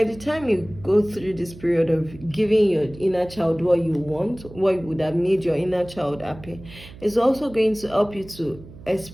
the time you go through this period of giving your inner child what you want, what would have made your inner child happy, it's also going to help you to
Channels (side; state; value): right; noise; hum, 18 dB below the sound